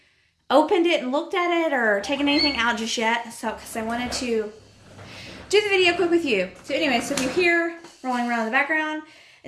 opened it and looked at it or taken anything out just yet. So because I wanted to do the video quick with you. So anyway, so if you hear rolling around in the background,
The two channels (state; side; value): identical; both; correlation 1.00